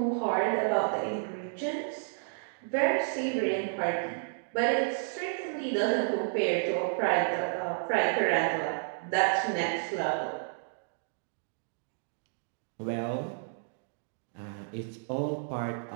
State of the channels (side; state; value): left; silent; digital silence